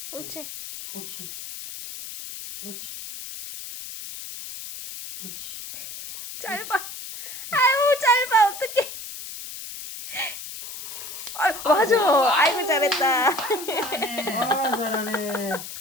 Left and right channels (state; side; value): noise; left; hiss, 10 dB below the sound